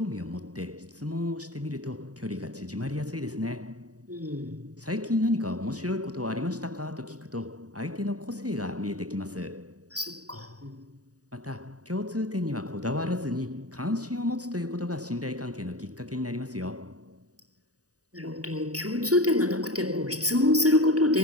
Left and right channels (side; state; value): left; late; 0.67 ms